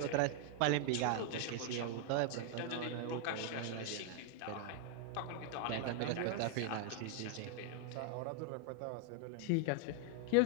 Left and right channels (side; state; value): both; different; correlation 0.00